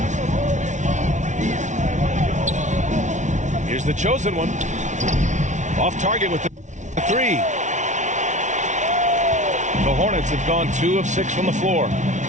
Here's the chosen one. Off target with the 3. The Hornets have gone 2 of 6 from the floor.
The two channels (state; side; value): late; left; 0.35 ms